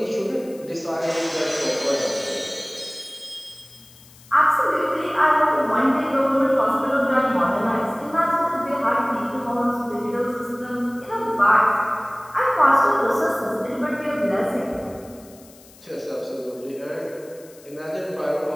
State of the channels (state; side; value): noise; left; hiss, 24 dB below the sound